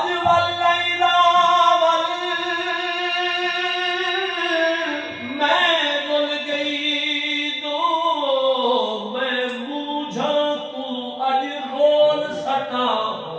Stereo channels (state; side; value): identical; both; correlation 1.00